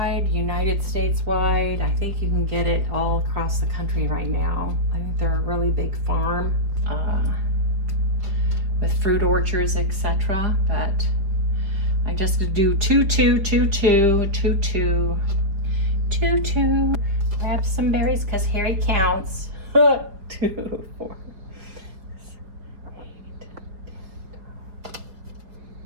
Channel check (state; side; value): late; left; 5.1 ms